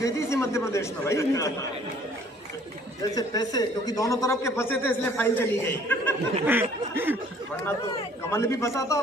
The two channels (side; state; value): both; normal; correlation 0.57